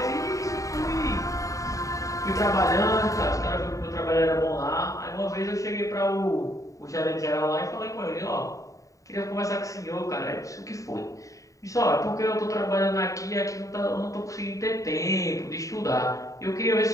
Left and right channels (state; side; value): late; right; 0.16 ms